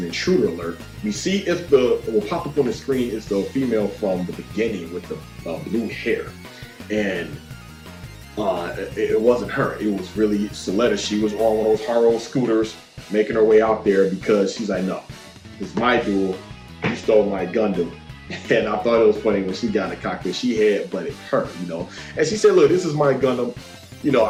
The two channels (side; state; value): both; identical; correlation 1.00